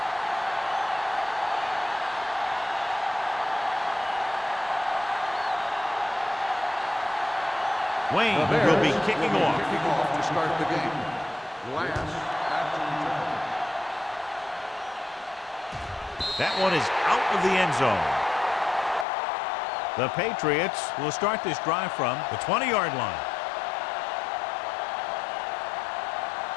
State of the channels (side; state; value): right; drops out; at 19.1 s